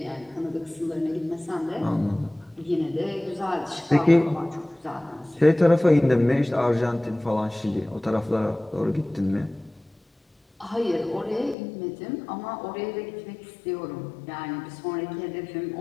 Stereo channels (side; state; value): right; drops out; at 11.6 s